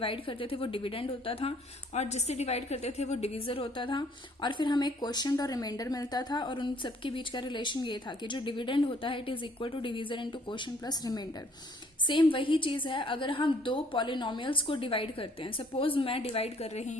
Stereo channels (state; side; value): normal; both; correlation 0.61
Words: करते थे वो डिविडेंड होता था और जिससे डिवाइड करते थे वो डिविजर होता था और फिर हमें क्वोशिएंट और रिमाइंडर मिलता था और उन सबके बीच का रिलेशन ये था कि जो डिविडेंड होता है it is equal to divisor into quotient plus remainder. Same वही चीज है अगर हम दो पॉलिनोमियल्स को डिवाइड करते हैं. सपोज मैं डिवाइड कर रही